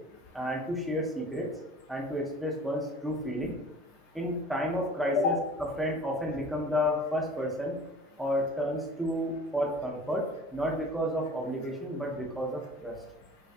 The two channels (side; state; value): both; normal; correlation 0.44